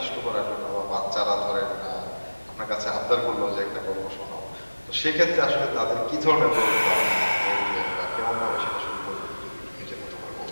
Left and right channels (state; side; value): inverted; both; correlation -1.00